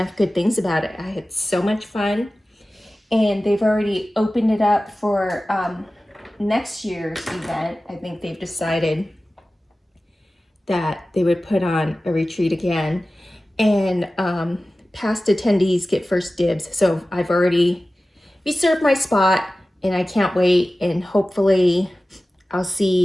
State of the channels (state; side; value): normal; both; correlation 0.96